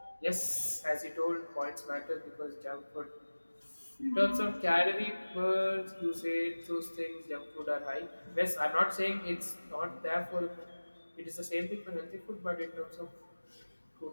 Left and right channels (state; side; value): inverted; both; correlation -1.00